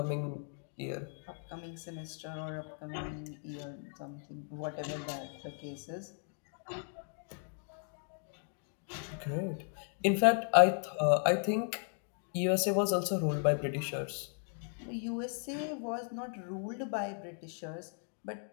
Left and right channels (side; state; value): right; silent; 54 dB below the other